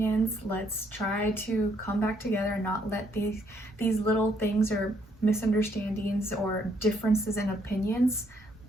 Let's try to come back together and not let these little things or misunderstandings or differences in opinions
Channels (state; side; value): normal; both; correlation 0.70